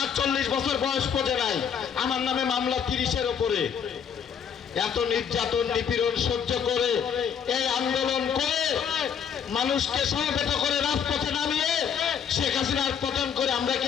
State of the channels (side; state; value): right; quieter; 7.5 dB